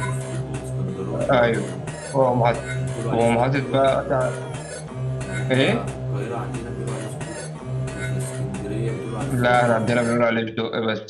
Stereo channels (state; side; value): identical; both; correlation 1.00